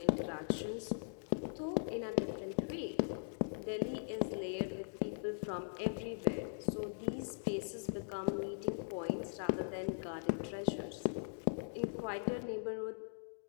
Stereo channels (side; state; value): right; silent; digital silence